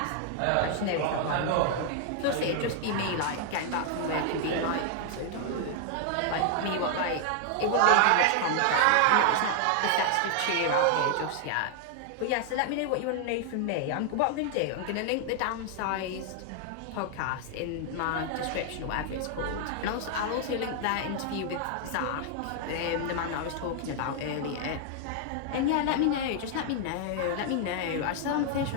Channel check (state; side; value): different; both; correlation 0.00